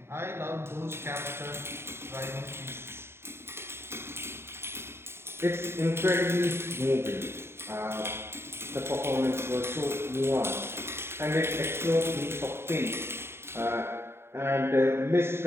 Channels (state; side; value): late; left; 0.12 ms